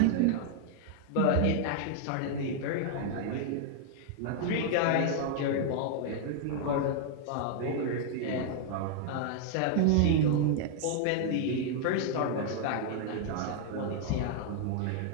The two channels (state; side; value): different; both; correlation 0.00